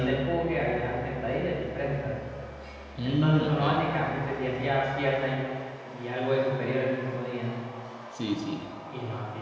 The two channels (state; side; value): identical; both; correlation 1.00